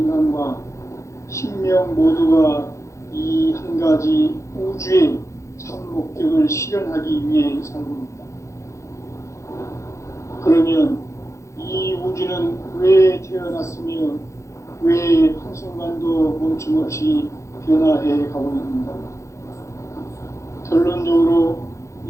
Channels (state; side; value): late; right; 0.14 ms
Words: 신명 모두가 이 한 가지 우주의 참 목적을 실현하기 위해 살고 있다. 그러면 이 우주는 왜 태어났으며 왜 한순간도 멈춤없이 변화해 가고 있는가? 결론적으로